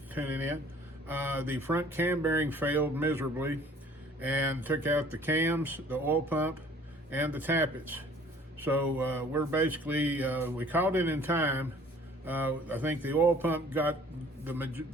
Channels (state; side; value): normal; both; correlation 0.53